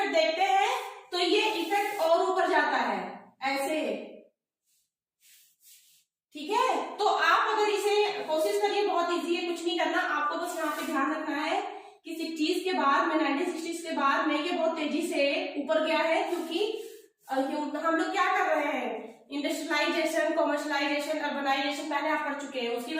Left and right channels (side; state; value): both; identical; correlation 1.00